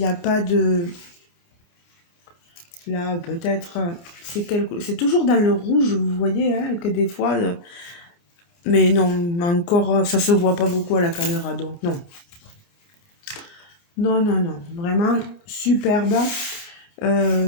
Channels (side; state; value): right; late; 29 ms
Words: a pas de. Là, peut-être. C'est toujours dans le rouge, vous voyez, hein, que des fois. Mais non, encore, ça se voit pas beaucoup à la caméra, donc non. Non, non, non. Vraiment superbe.